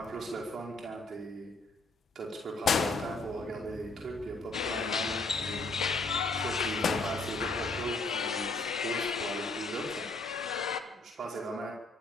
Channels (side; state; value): right; quieter; 3.2 dB